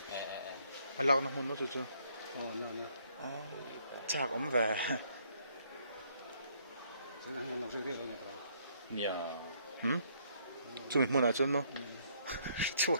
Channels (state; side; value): inverted; both; correlation -0.68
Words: alak na hun no chu Oh no no. chak om về Sana han no se ke ro ne to. nia chu mi mun a chun no chu